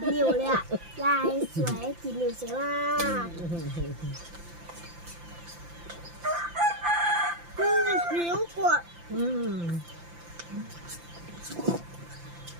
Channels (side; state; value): left; late; 5.8 ms